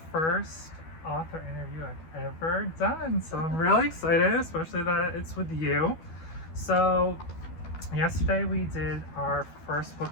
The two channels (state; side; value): late; right; 12 ms